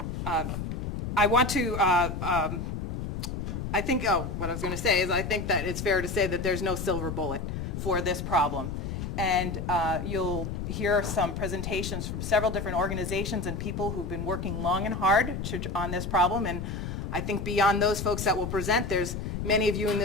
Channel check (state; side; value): noise; left; rumble, 4 dB below the sound